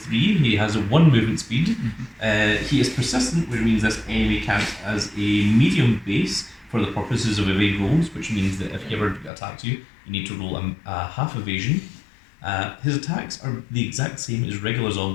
he has a 1 movement speed. He is persistent, which means this enemy counts as a medium base for the purposes of evade rolls, which means that if he ever attacks you, you need to roll a half evasion. His attacks are the exact same as regular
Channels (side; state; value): right; drops out; at 9.3 s